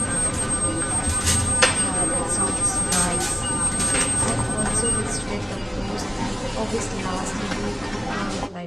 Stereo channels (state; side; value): identical; both; correlation 1.00